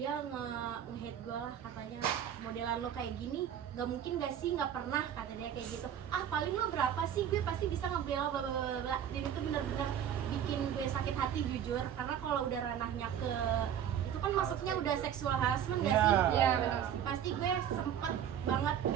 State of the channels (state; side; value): quieter; left; 9.5 dB